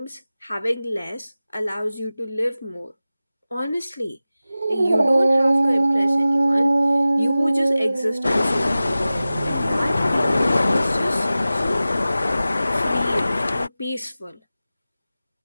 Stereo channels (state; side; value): inverted; both; correlation -0.96